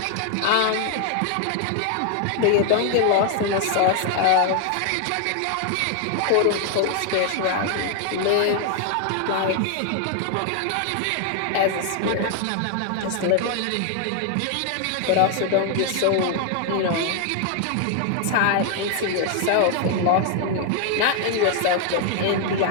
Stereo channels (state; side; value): different; both; correlation 0.00